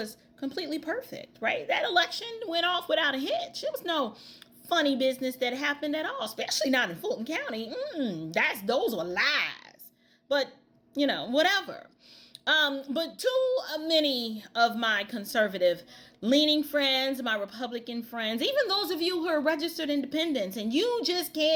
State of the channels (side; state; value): both; identical; correlation 1.00